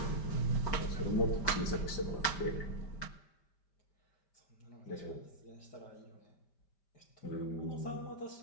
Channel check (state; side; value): late; right; 5.1 ms